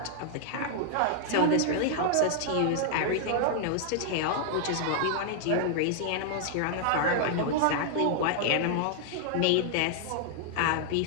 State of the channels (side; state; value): both; different; correlation 0.00